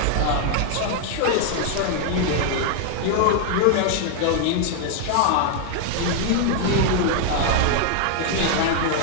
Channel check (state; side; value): different; both; correlation 0.00